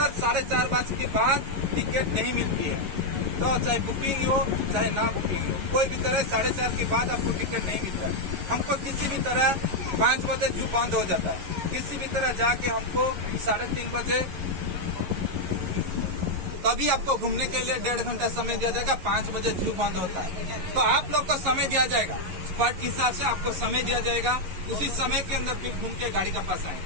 4:30 बजे के बाद टिकट नहीं मिलती है। तो चाहे बुकिंग हो चाहे ना बुकिंग हो, कोई भी तरह 4:30 के बाद आपको टिकट नहीं मिलता है। हमको किसी भी तरह 5 बजे जू बंद हो जाता है। किसी भी तरह जाके हमको 3:30 बजे, तभी आपको घूमने के लिए 1.5 घंटा समय दिया जाएगा। 5 बजे जू बंद होता है। तो आप लोग को समय दिया जाएगा, स्पॉट के हिसाब से आपको समय दिया जाएगा। उसी समय के अंदर फिर घूम के गाड़ी का पास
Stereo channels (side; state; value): left; late; 11 ms